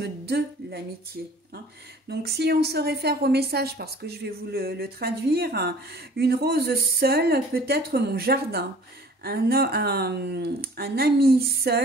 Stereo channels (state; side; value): normal; both; correlation 0.50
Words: de l'amitié. Donc, si on se réfère au message, parce que je vais vous le traduire, une rose seule peut être mon jardin, un ami